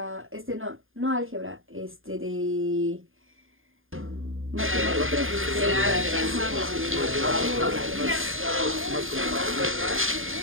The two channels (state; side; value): late; left; 0.59 ms